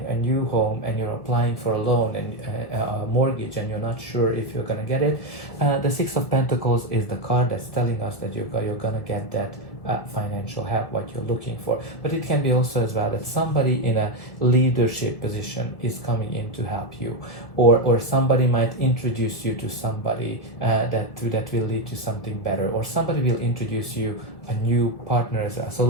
a new home, and you're applying for a loan and a mortgage, and you're not sure if you're going to get it. The Six of Pentacles is the card that's telling us that you're going to get that financial help, what you're looking for. But it can be also as well that somebody in a leadership position is coming in to help you, or somebody might introduce you to somebody that will lead to something better, or somebody will introduce you a new partner as well. So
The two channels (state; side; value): late; right; 1.6 ms